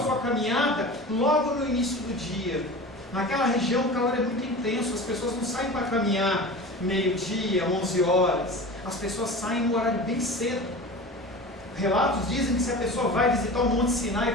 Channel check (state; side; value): normal; both; correlation 0.34